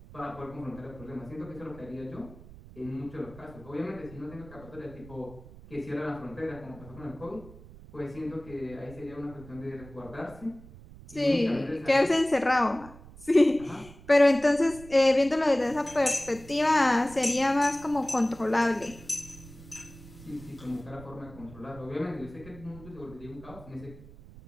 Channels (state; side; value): noise; right; rumble, 18 dB below the sound